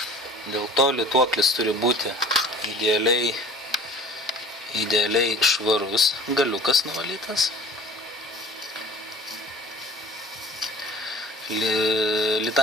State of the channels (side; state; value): both; normal; correlation 0.44